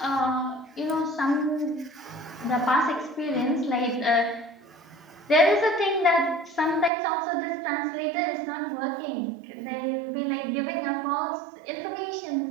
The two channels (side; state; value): left; drops out; at 6.9 s